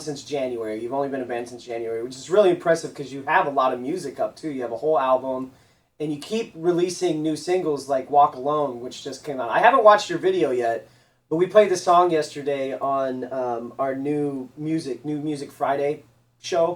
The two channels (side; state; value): both; identical; correlation 1.00